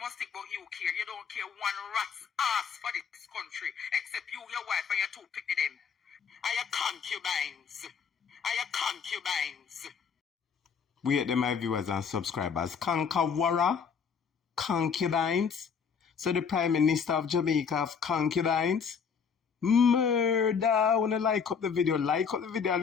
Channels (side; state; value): right; quieter; 6.4 dB